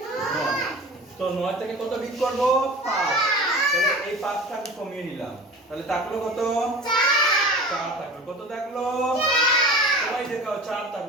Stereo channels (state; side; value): normal; both; correlation 0.37